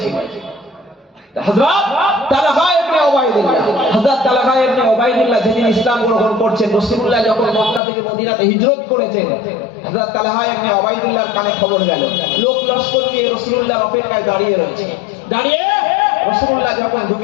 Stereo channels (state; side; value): drops out; right; at 7.8 s